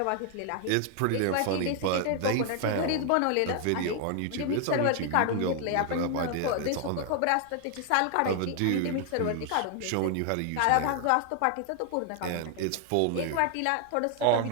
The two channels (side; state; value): both; different; correlation 0.00